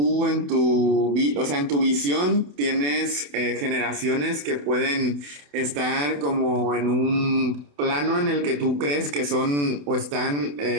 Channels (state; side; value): late; left; 28 ms